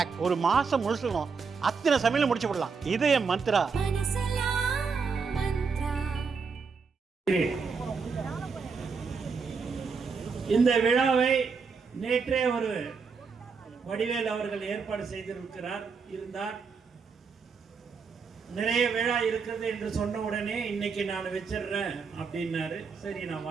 ஒரு மாசம் முழுசுக்கும் அத்தனை சமையல முடிச்சு விடலாம். இதய மந்த்ரா. இந்த விழாவை நேற்றே ஒரு வடிவேல் அவர்கள் ஏற்பாடு இருந்தார். நிறைய விழா இருக்கிறது என்று சொன்ன உடனே இன்னைக்கு நான் வச்சிடுறேன் அப்படின்னாரு. சரி நான்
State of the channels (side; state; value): left; quieter; 5.3 dB